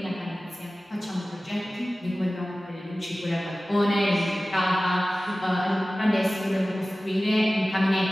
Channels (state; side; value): normal; both; correlation 0.96